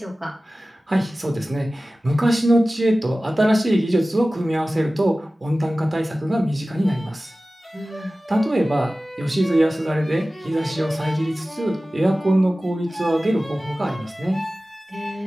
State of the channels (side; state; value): both; normal; correlation 0.96